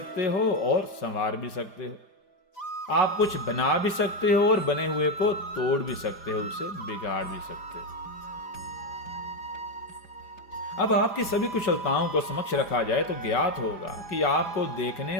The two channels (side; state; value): right; late; 5.0 ms